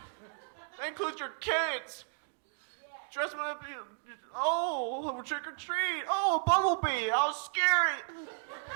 That includes your kids. Dress them up. Trick or treat. Oh, a bumblebee. How scary.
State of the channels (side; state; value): left; silent; digital silence